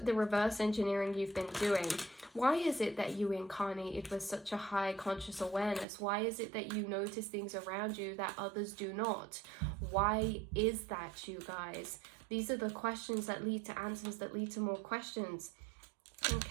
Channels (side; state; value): left; drops out; at 5.9 s